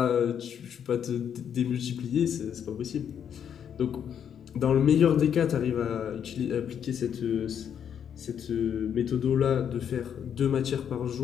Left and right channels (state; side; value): quieter; right; 8.5 dB